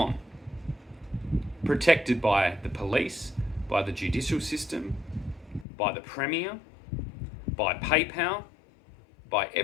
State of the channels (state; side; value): drops out; right; at 5.7 s